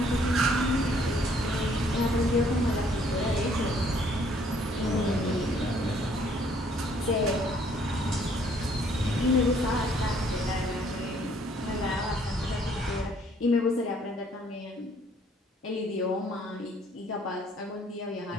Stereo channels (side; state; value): both; normal; correlation 0.63